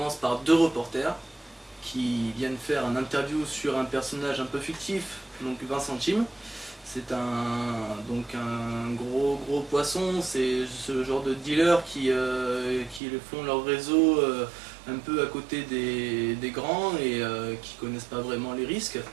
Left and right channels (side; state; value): left; drops out; at 13.0 s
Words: par deux reporters qui viennent faire un interview sur un personnage un peu fictif, donc Vincent Chim. C'est un gros poisson, c'est ce genre de dealers qui font leur réseau un peu à côté des grands et qui connaissent pas vraiment les risques.